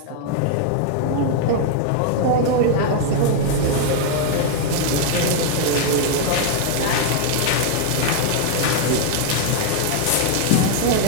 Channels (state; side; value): different; both; correlation 0.00